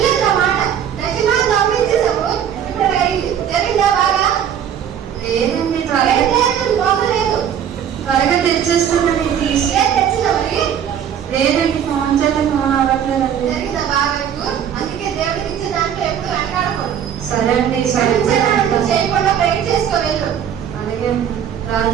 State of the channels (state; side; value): quieter; left; 9.0 dB